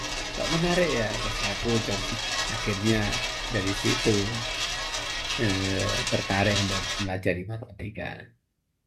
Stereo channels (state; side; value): identical; both; correlation 1.00